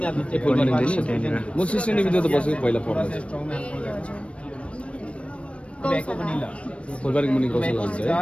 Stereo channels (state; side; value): late; right; 0.061 ms